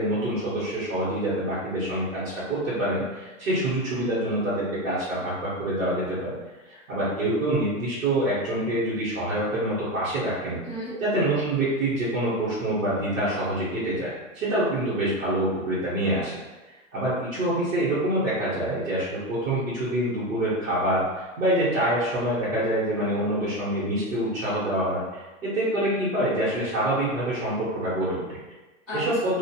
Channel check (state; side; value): normal; both; correlation 0.19